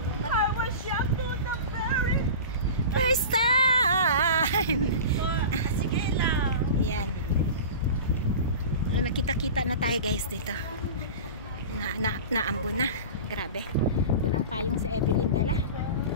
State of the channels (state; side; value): inverted; both; correlation -0.33